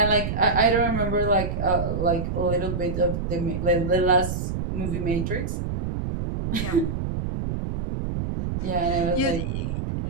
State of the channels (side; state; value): right; noise; rumble, 3 dB below the sound